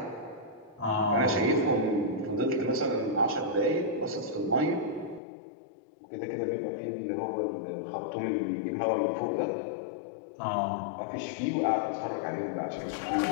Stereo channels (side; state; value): right; drops out; at 5.2 s